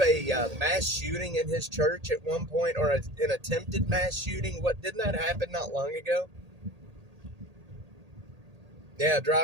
mass shooting in his church at one point, or an attempted mass shooting? Didn't that happen not long ago? Yeah,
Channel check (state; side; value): late; left; 1.8 ms